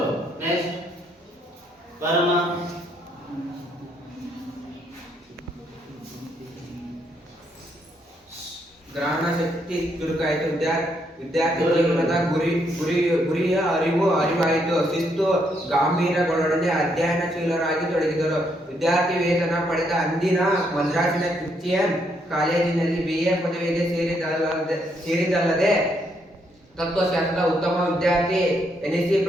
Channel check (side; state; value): both; normal; correlation 0.74